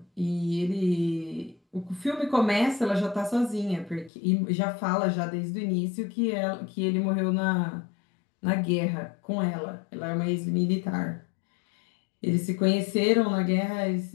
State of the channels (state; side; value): drops out; right; at 4.1 s